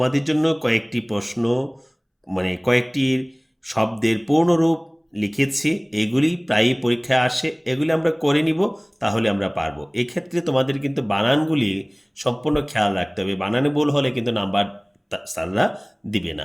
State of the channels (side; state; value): both; identical; correlation 1.00